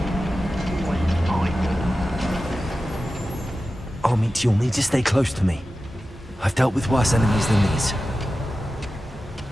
Armit, you'll need to stay close to me. I've dealt with worse enemies than these.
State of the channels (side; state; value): both; normal; correlation 0.94